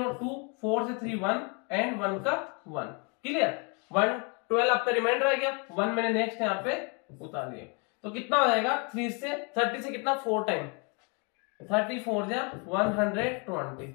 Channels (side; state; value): right; quieter; 34.4 dB